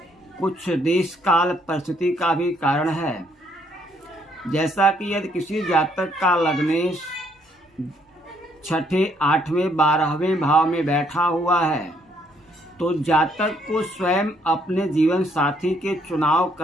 कुछ देश काल परिस्थिति का भी कारण है। जैसा कि यदि किसी जातक का लग्नेश छठे, आठवें, 12वें भाव में बैठा हुआ है तो जातक को स्वयं अपने जीवन साथी के चुनाव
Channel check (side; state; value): both; normal; correlation 0.69